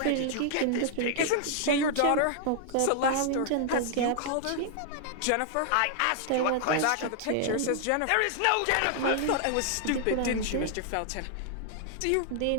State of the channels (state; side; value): different; both; correlation 0.00